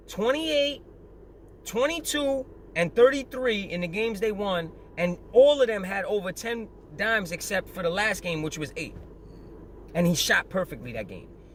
28, 22, and 33 in the games they won, and all of them had over 10 dimes except for the last game, which was 8. And he shot perfectly that game.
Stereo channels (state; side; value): identical; both; correlation 1.00